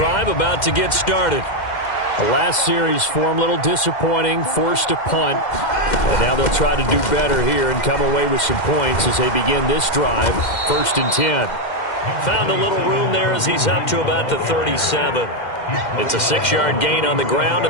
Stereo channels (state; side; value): late; right; 2.1 ms